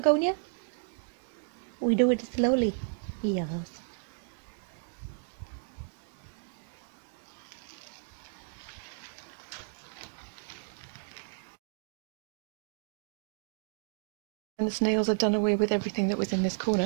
We do it slowly. Yes. And the snails have done away with everything that was in this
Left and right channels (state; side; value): silent; left; digital silence